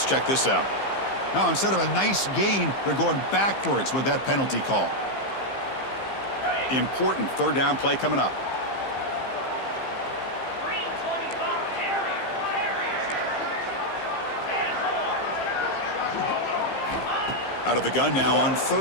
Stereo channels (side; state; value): right; late; 15 ms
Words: check this out. Now, instead of a nice gain, they're going backwards with that penalty call. Important 3rd down play coming up. Out of the gun now on